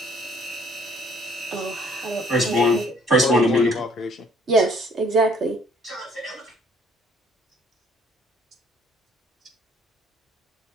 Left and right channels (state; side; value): normal; both; correlation 0.60